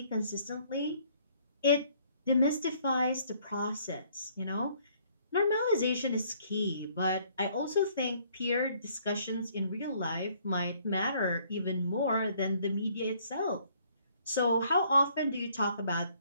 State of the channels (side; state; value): both; inverted; correlation -0.63